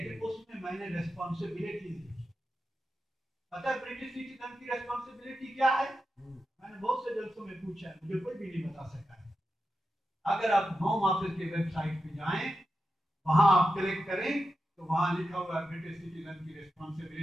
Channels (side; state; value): both; normal; correlation 0.89